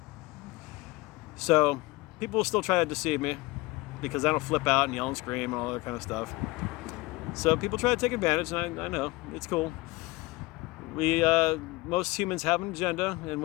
So people will still try to deceive me because I don't flip out and yell and scream and all that kind of stuff. So people try to take advantage, and I know, it's cool. Most humans have an agenda, and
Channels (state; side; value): quieter; right; 22.0 dB